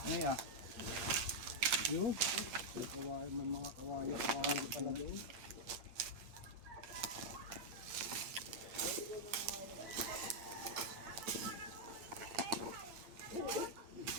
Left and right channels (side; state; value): left; late; 8.6 ms